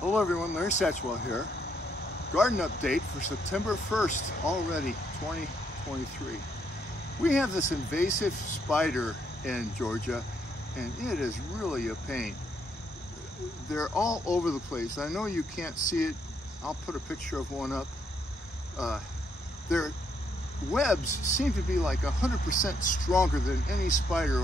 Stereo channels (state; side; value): normal; both; correlation 0.74